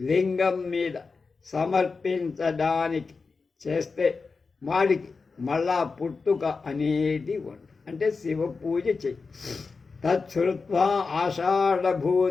మీద సమర్పించడానికి చేస్తే వాడికి మళ్ళా పుట్టుక అనేది ఉండదు. అంటే శివ పూజ చెయ్యి. తచ్చుత్వా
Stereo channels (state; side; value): quieter; right; 4.5 dB